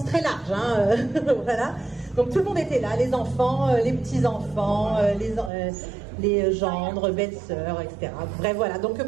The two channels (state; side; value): drops out; left; at 5.5 s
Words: très large, hein, voilà. Donc tout le monde était là, les enfants, les petits-enfants, les gendres, belles-sœurs, etc. Bref, voilà. Donc